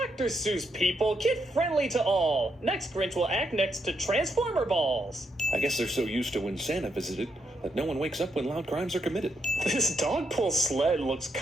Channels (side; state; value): both; normal; correlation 0.79